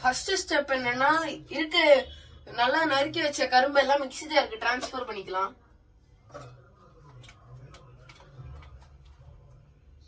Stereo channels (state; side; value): identical; both; correlation 1.00